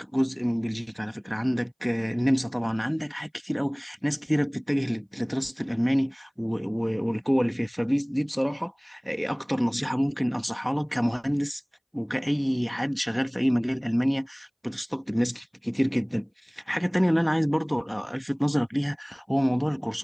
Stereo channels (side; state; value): both; identical; correlation 1.00